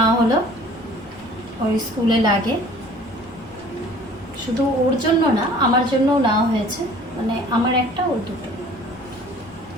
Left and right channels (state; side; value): normal; both; correlation 0.50